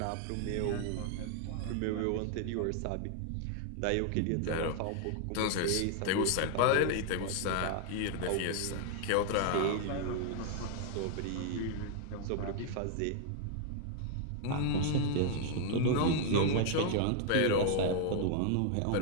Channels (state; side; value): different; both; correlation 0.00